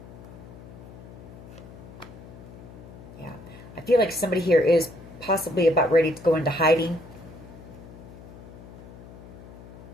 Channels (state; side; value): noise; left; hum, 16 dB below the sound